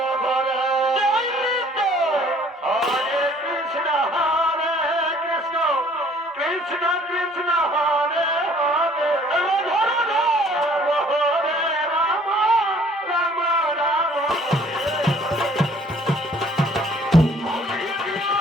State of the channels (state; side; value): normal; both; correlation 0.57